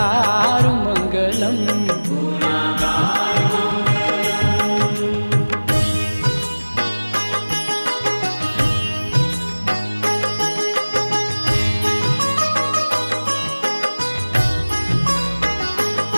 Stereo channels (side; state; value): both; inverted; correlation -1.00